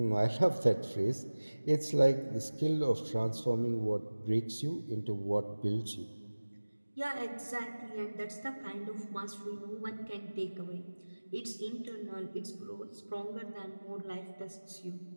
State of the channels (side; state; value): both; inverted; correlation -1.00